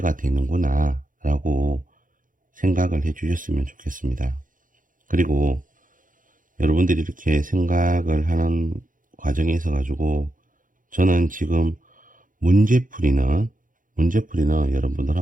되는구나 라고 생각을 해 주셨으면 좋겠습니다. 그리고 여러분들이 이렇게 생각을 하는 과정에 있어 가지고 저는 지금 문제풀이는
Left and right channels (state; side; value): late; left; 0.39 ms